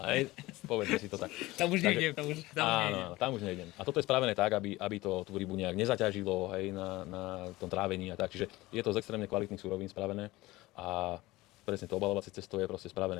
hej. Povedzme si to tak. Tam už nejdem, tam už nejdem. A toto je spravené tak, aby to tú rybu nejak nezaťažilo, hej, na tom trávení a tak. Čiže je to z extrémne kvalitných surovín spravené a presne to obalovacie cesto je proste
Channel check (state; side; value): quieter; right; 19.3 dB